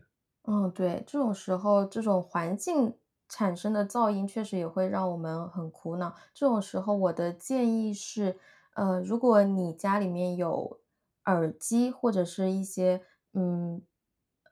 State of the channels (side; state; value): both; identical; correlation 1.00